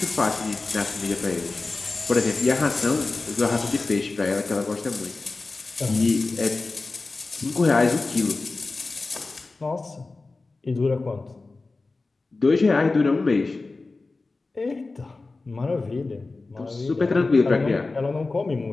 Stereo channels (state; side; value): quieter; right; 3.6 dB